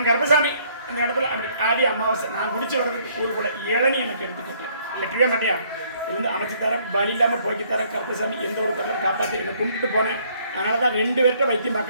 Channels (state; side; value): inverted; both; correlation -0.64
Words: கருப்பசாமி அந்த இடத்துல அப்படி ஆடி அமாவாசை நான் குடிச்சு வர்றதுக்கு ஒரு கூட இளநி எனக்கு எடுத்துக்கிட்டேன் எட்டவே மாட்டியா இருந்து அமைச்சு தரேன் வழி இல்லாமல் போய்க்கு தரேன் கருப்பசாமி எந்த ஒரு பொருளும் காப்பாற்றி என்னை கும்பிட்டு போனேன் அதனால தான் 2 பேர்கிட்ட வைத்தியம்